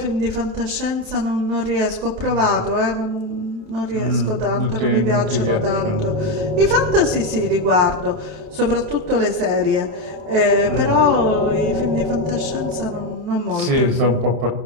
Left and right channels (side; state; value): left; late; 31 ms